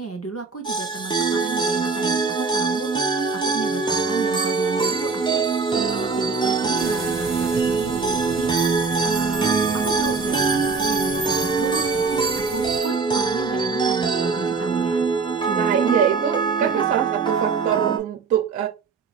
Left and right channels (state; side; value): quieter; left; 4.8 dB